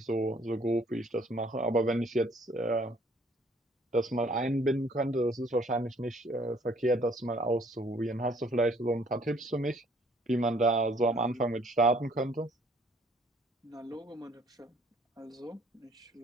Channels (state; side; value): normal; both; correlation 0.61